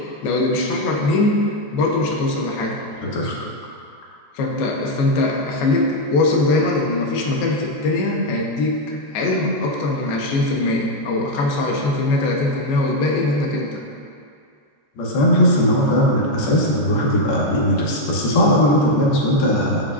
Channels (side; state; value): right; late; 14 ms